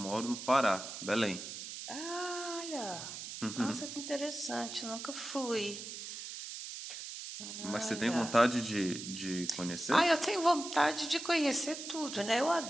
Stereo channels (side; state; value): right; noise; hiss, 9 dB below the sound